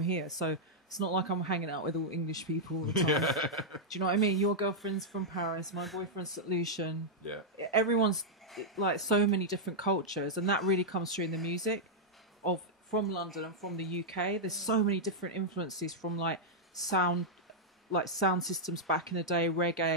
so it's not like I'm hanging out with all English people all the time. Do you know what I mean? Your girlfriend's from Paris, my boyfriend's St. Lucian. Yeah. Everyone's like so many different cultures, and that really comes through in the music from London and from the UK. There's so many different influences from sound systems back in the day,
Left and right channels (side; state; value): both; normal; correlation -0.06